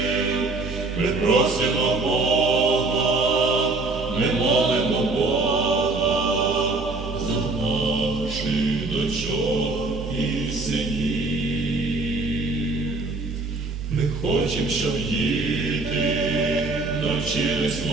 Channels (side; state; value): left; quieter; 3.4 dB